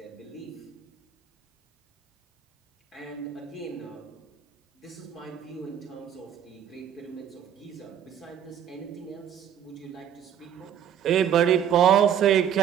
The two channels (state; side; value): quieter; left; 9.3 dB